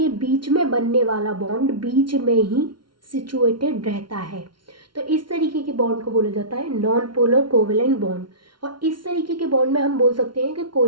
बीच में बनने वाला बॉन्ड बीच में ही सिचुएटेड रहता है। तो इस तरीके के बॉन्ड को बोला जाता है नॉन पोलर कोवेलेंट बॉन्ड। और इस तरीके के बॉन्ड में हम बोल सकते हैं कि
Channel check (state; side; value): late; left; 0.73 ms